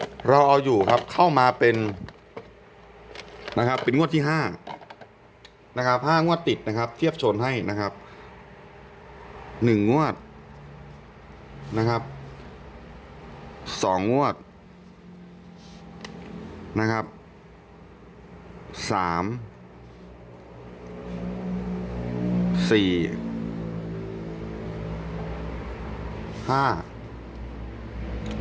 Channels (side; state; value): both; identical; correlation 1.00